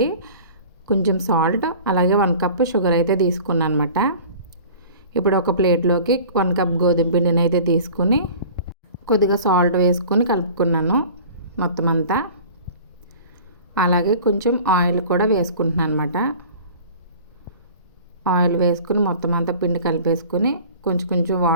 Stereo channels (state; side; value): inverted; both; correlation -0.43